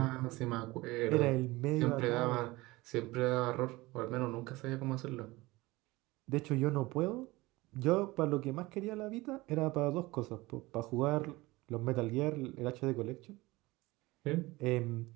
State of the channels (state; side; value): quieter; left; 20.8 dB